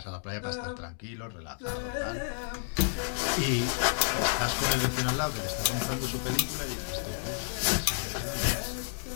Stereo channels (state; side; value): silent; right; digital silence